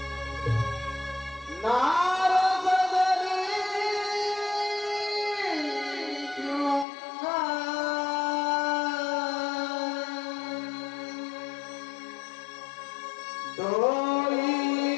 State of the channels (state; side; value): drops out; right; at 6.9 s